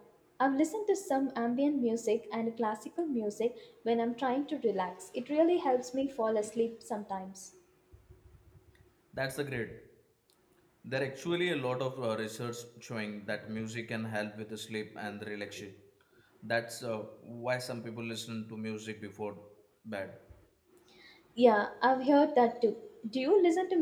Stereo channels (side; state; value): both; identical; correlation 1.00